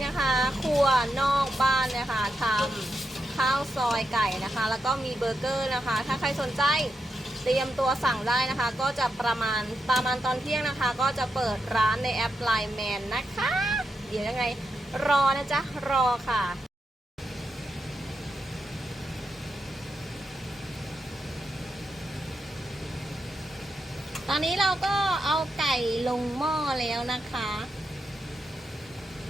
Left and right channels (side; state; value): both; normal; correlation 0.86